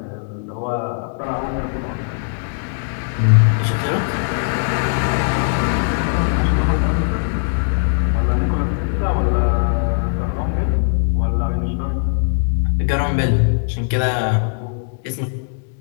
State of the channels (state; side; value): silent; right; 66 dB below the other